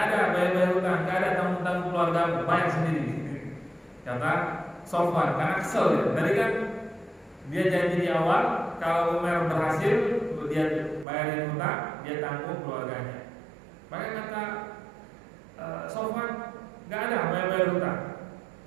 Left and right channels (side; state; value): left; drops out; at 11.1 s